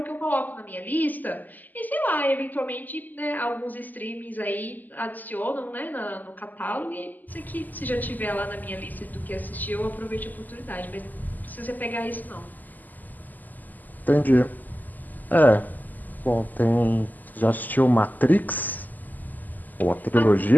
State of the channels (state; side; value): late; right; 0.084 ms